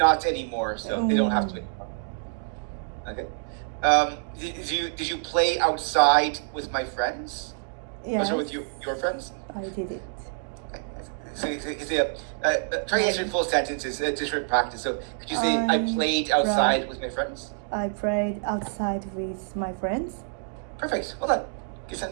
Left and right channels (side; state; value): left; silent; digital silence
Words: anymore. So they don't have to anymore. Okay. Did you play outside with my friends? Yes. Or with your friends? I did it. So, try to answer in full sentences just for practice. So, could you say, I played outside with my friends? I played outside with my friends. Perfect. Well done. Good